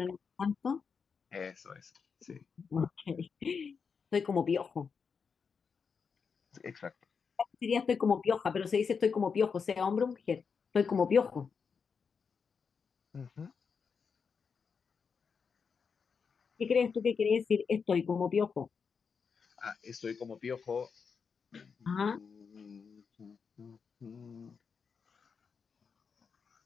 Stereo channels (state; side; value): quieter; right; 5.8 dB